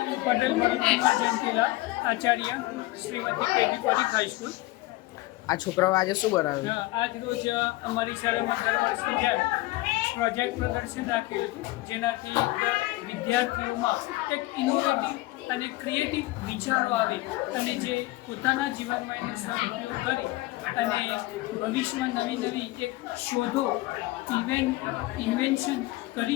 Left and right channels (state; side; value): quieter; right; 19.6 dB